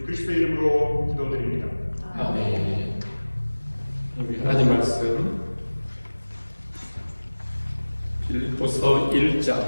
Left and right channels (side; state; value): both; inverted; correlation -1.00